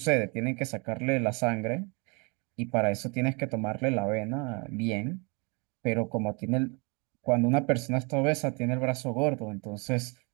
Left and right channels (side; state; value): left; quieter; 31.3 dB